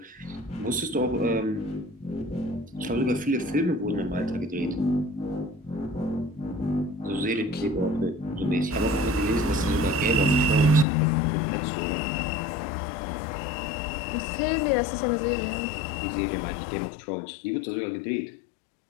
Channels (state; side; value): drops out; right; at 10.9 s